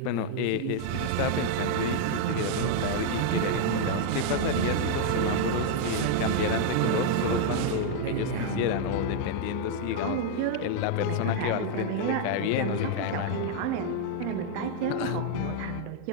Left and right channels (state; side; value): different; both; correlation 0.00